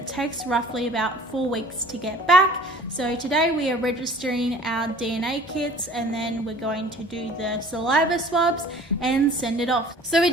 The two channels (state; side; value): normal; both; correlation 0.48